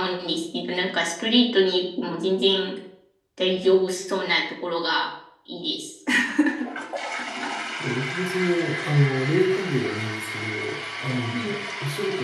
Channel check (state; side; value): identical; both; correlation 1.00